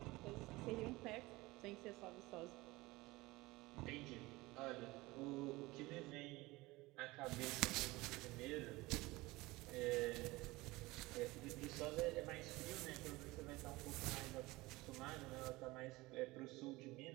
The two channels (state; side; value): quieter; left; 20.9 dB